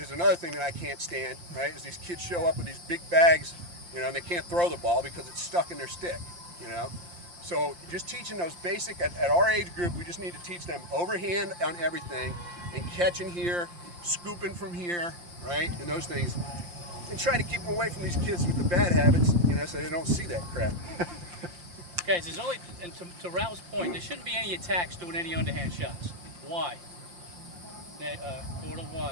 another thing that I can't stand, right? Is these kids show up with these big bags, and they can't throw the ball because it's stuck in their stick, So just teaching those basic, at our age group, we just need to teach them overhand on everything, and catching here, scooping from here, right? And those things. And try to keep them away from these kids with the bad habits, so they don't see that crap. Guys, there's only, and to Ralph's point, there shouldn't be any attacks doing any underhand shots. Why? Portal,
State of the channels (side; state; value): left; late; 5.7 ms